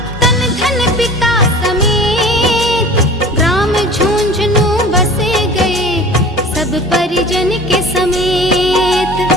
तन धन पिता समेत, ग्राम झुंझुनू बसे गए सब परिजन के समेत।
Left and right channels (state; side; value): normal; both; correlation 0.41